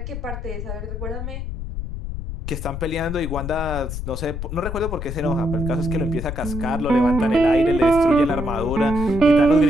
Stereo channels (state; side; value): noise; left; rumble, 6 dB below the sound